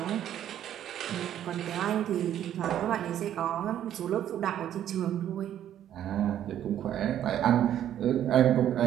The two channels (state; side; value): quieter; left; 10.9 dB